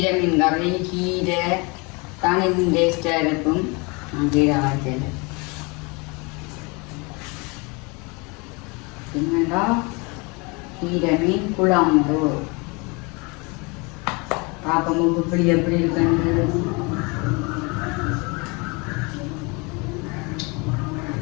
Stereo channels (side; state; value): right; quieter; 28.8 dB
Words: மீன் கறி கீரை தானே டேஸ்டாக இருக்கும். கீரை வாய்ச்சல் என்னடா கீரை மீன் குழம்பு பார்க்கும்போது இப்படி எப்படி இருக்குன்னு